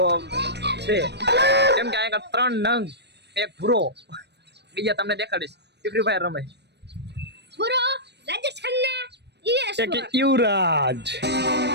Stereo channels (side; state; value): left; late; 0.50 ms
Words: છે કેમ કે આ ત્રણ નંગ એક ભૂરો બીજા તમને દેખાડીશ કે ફ્રી ફાયર રમે। ભૂરો રાજેશ ખન્ના એક युवराज